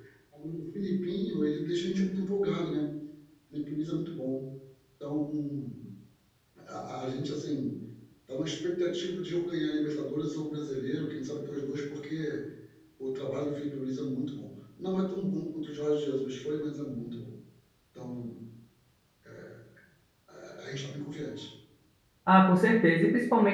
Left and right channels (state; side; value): identical; both; correlation 1.00